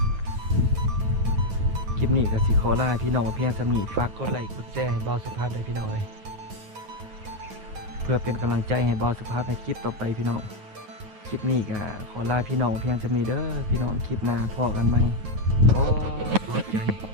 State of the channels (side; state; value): left; late; 9.3 ms